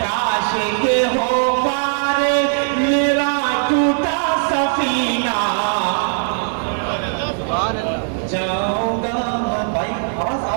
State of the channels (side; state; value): left; silent; digital silence